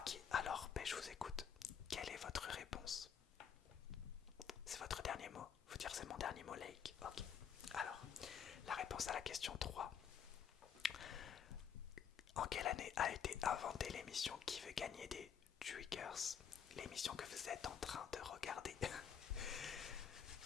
alors je vous écoute. Quelle est votre réponse? C'est votre dernier mot? Faut dire c'est mon dernier mot, Lake. Ok. Alors,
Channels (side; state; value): right; quieter; 7.7 dB